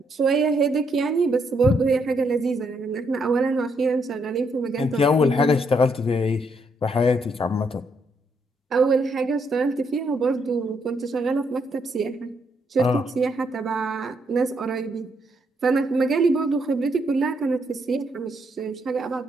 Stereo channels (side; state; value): both; normal; correlation 0.75